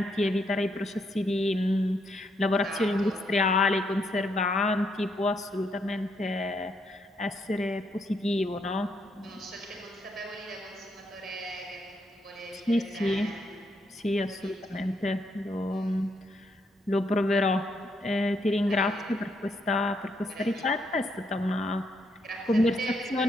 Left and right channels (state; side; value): normal; both; correlation 0.76